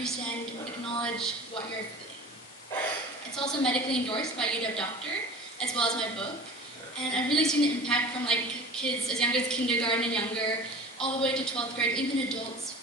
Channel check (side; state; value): both; normal; correlation 0.39